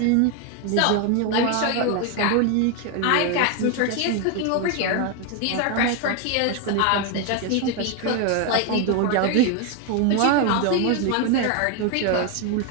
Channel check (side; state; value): both; different; correlation 0.01